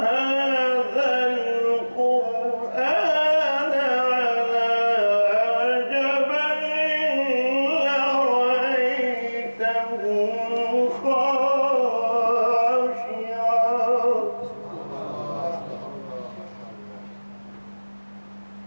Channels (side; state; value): both; inverted; correlation -1.00